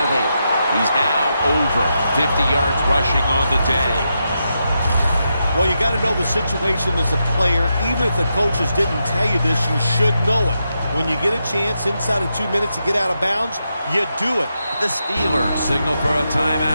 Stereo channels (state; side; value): inverted; both; correlation -0.85